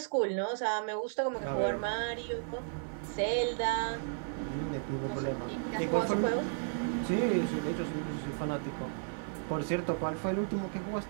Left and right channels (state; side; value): silent; left; digital silence